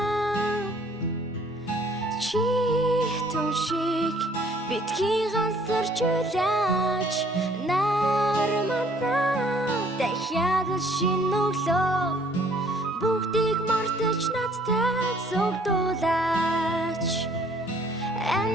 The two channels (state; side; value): normal; both; correlation 0.60